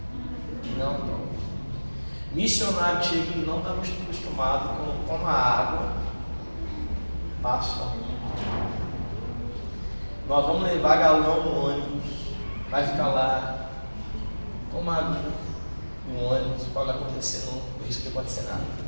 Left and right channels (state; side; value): inverted; both; correlation -1.00